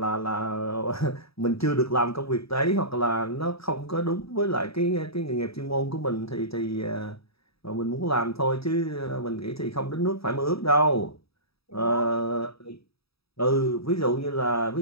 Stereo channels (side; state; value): right; late; 0.77 ms